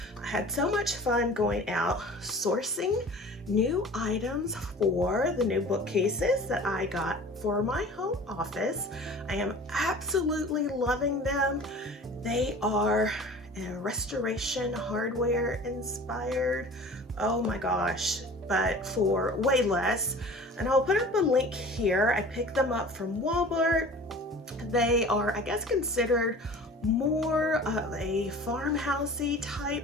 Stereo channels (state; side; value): normal; both; correlation 0.42